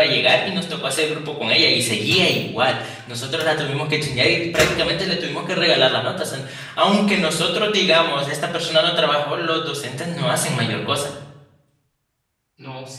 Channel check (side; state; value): both; identical; correlation 1.00